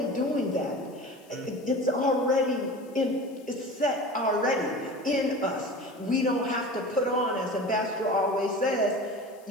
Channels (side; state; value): left; noise; hiss, 28 dB below the sound